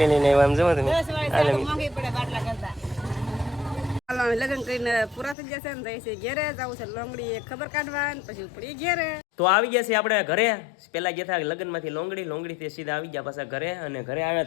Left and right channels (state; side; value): drops out; right; at 5.4 s